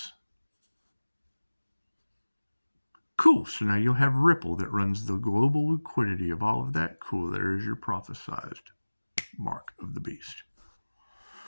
Cool, so now you'll have Ripple that runs the global liquidity of all of that. Cool, there is your prophesized mark of the beast.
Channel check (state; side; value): inverted; both; correlation -1.00